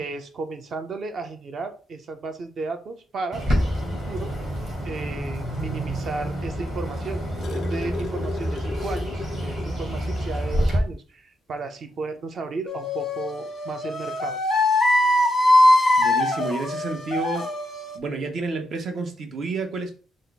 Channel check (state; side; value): normal; both; correlation 0.83